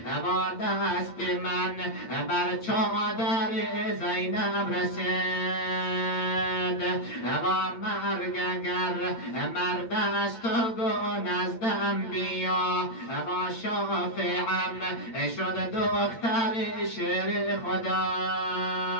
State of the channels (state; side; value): late; right; 8.8 ms